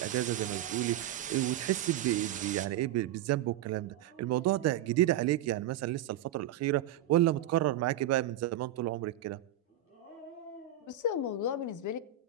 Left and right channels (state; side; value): quieter; left; 10.3 dB